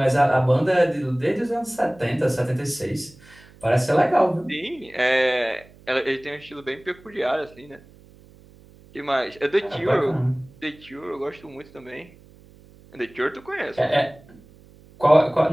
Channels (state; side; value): noise; right; hum, 25 dB below the sound